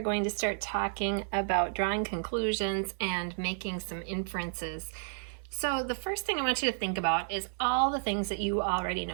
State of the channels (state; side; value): silent; left; 57 dB below the other